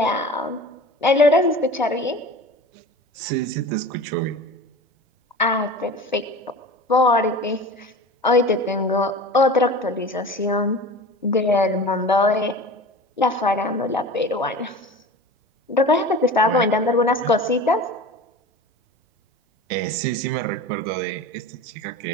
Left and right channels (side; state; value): both; normal; correlation 0.35